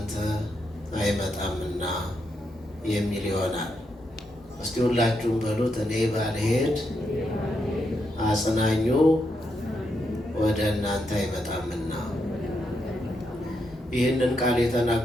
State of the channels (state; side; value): normal; both; correlation 0.81